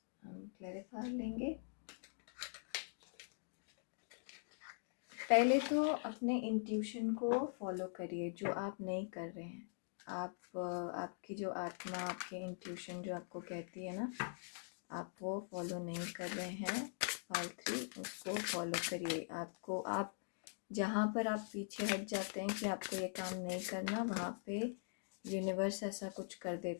हम क्लैरिफाई लेंगे। पहले तो अपने इंट्यूशन को फॉलो करिए जो आप नहीं कर रहे हैं। आपकी जो आत्मा, आपकी इंट्यूशन जो आपको कहती है ना, आप वो फॉलो नहीं कर रहे हैं। पार्ट 3 उसको फॉलो करिए। आप जहाँ पर आप पीछे हट जाते हैं कि आपको ये काम नहीं करना, वहाँ पे यूनिवर्स ऐसा कुछ कर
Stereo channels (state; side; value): silent; right; digital silence